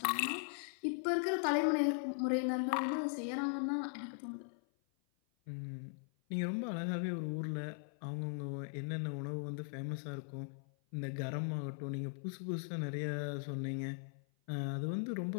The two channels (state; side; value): silent; right; 52 dB below the other